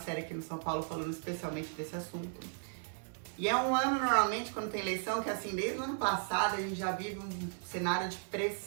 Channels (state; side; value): silent; left; digital silence